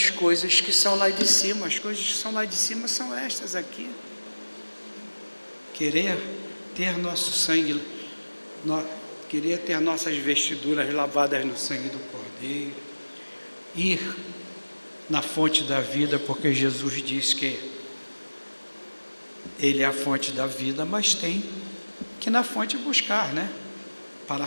coisas que são lá de cima. As coisas que são lá de cima são estas aqui. Querer ter nosso sangue, querer ter nossas vestiduras lavadas no sangue do Cordeiro, ir na fonte da vida, porque Jesus diz que Ele é a fonte da vida, mas tem que na fonte buscar, né? Para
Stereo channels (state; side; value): inverted; both; correlation -1.00